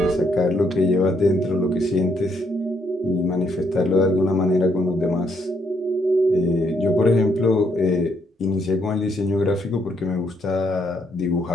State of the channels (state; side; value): normal; both; correlation 0.73